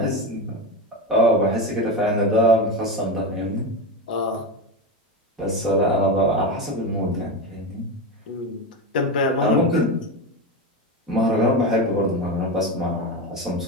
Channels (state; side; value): normal; both; correlation 0.17